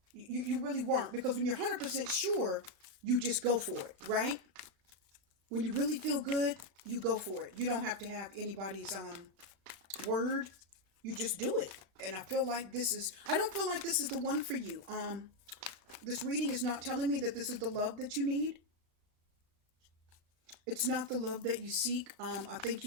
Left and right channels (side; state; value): left; late; 36 ms